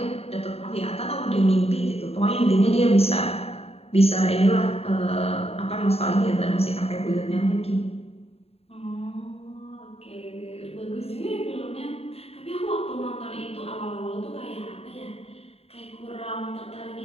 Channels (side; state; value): right; late; 0.29 ms